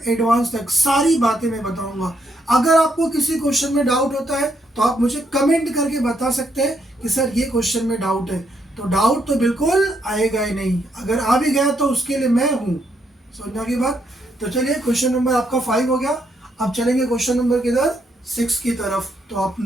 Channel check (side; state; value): both; normal; correlation 0.76